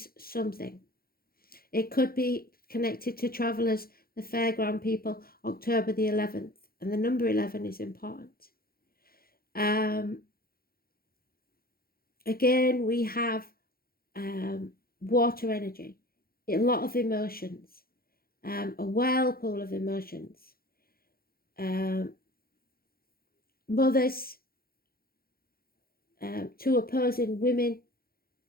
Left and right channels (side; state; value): right; late; 0.43 ms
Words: something. It could be connected to travellers, the fairground people, October the 11th, and the number 11 is important. Again, we have water energy, a lot of emotions, a whirlpool of emotions. Mothers, two opposing women,